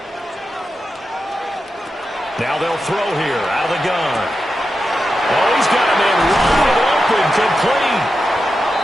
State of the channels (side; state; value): both; normal; correlation 0.90